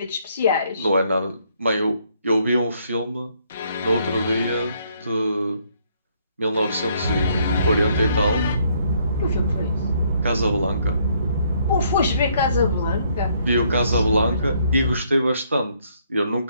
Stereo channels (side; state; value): both; inverted; correlation -0.69